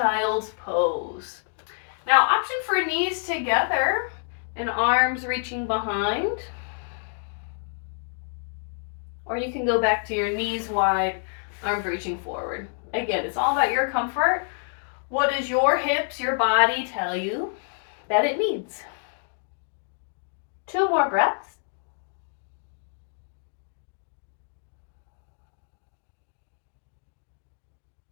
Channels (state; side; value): silent; right; digital silence